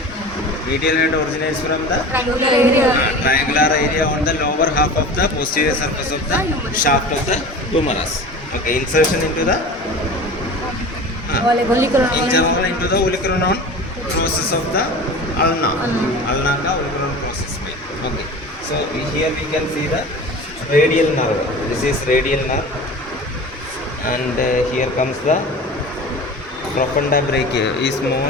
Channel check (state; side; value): normal; both; correlation 0.36